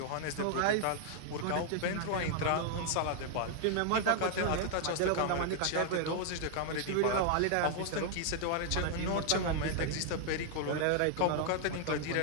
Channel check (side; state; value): both; different; correlation 0.00